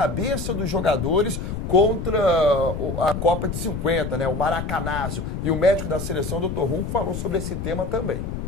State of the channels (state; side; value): noise; left; rumble, 5 dB below the sound